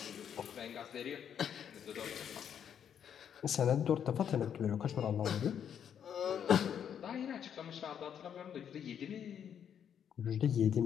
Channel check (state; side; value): quieter; right; 8.6 dB